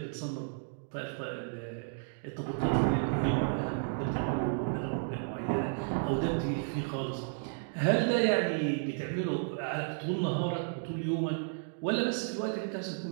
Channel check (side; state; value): left; silent; digital silence